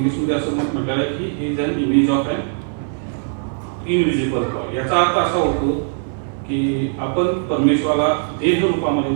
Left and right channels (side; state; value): left; silent; 65 dB below the other